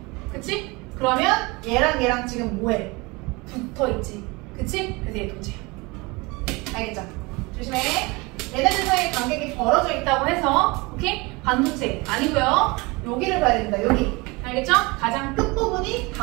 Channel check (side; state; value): left; quieter; 25.2 dB